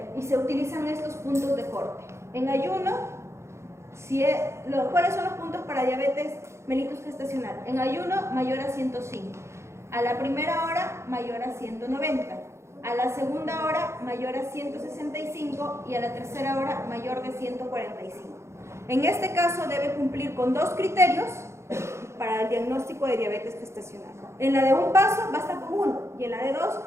Y se utilizan estos puntos de corte. En ayuno, ¿cuáles son los puntos para diabetes mellitus gestacional? En ayuno, mayor a 105. A la primera hora, mayor a 190. A la segunda hora, mayor a 165. Y a la tercera hora, mayor de 145. En este caso, debe cumplir con 2 criterios para el diagnóstico de diabetes gestacional. En la de un paso basta con uno y en la de dos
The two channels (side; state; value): left; late; 0.13 ms